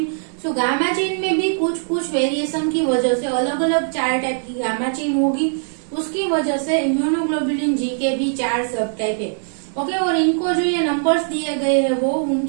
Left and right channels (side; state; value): left; silent; 57 dB below the other